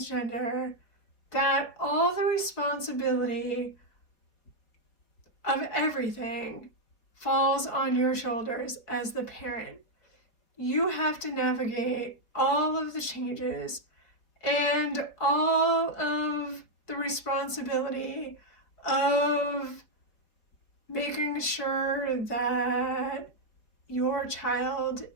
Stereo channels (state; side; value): late; right; 4.4 ms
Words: that all the responsibility of everything falls on your shoulders as the parent. You have to navigate all of the changes and all of the responsibility of making sure that your child